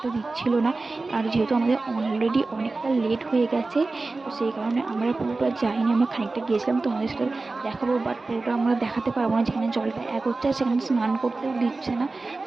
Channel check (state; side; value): quieter; left; 3.5 dB